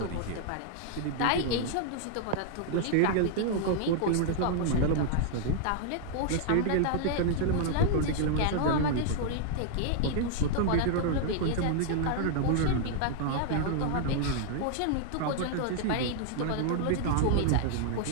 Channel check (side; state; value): both; different; correlation -0.01